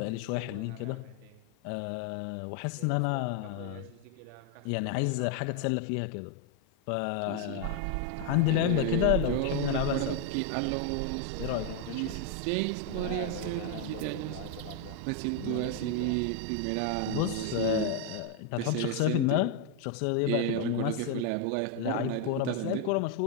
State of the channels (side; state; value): both; different; correlation 0.01